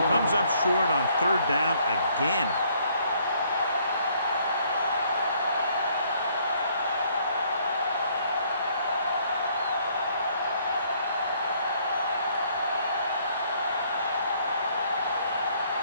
comes up short on 3rd down again.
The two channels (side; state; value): both; inverted; correlation -0.65